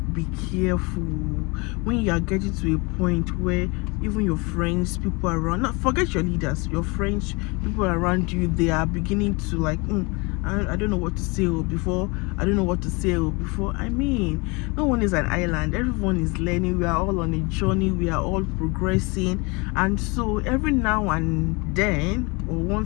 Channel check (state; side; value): quieter; right; 28.0 dB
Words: be careful when you are getting to a point where even your friends, people around, not forget your leaders, your friends, people around you, they are beginning to like, I don't know what to say before. I don't know what to say before. I mean, no one is an island. Everyone is learning. We are all on a journey. We are all progressing. And so every now and then, or